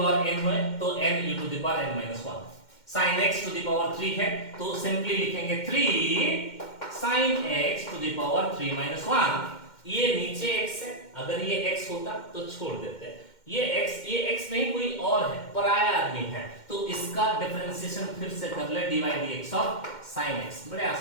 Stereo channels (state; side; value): late; right; 2.1 ms